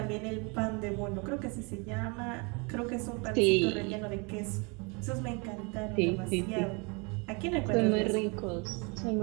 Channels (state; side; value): quieter; left; 31.1 dB